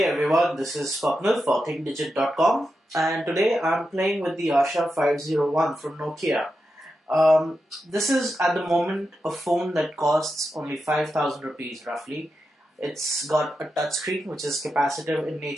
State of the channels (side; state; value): both; normal; correlation 0.88